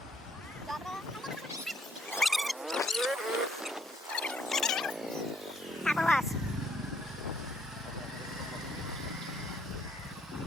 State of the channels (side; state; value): both; normal; correlation 0.67